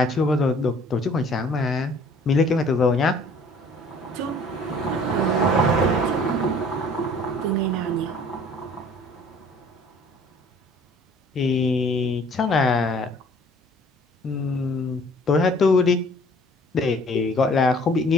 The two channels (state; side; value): normal; both; correlation 0.54